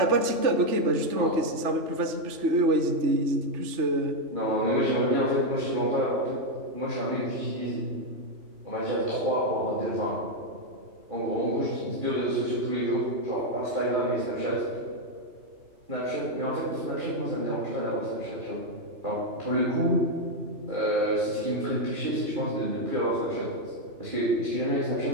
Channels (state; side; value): late; left; 3.4 ms